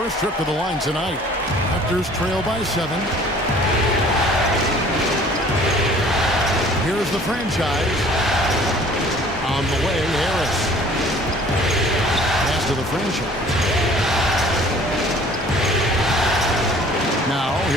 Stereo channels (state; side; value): normal; both; correlation 0.52